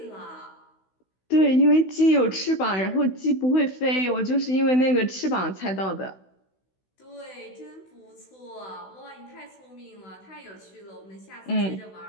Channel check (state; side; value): late; right; 16 ms